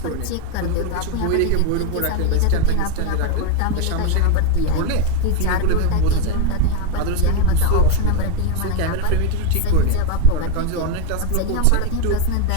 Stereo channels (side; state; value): both; different; correlation 0.03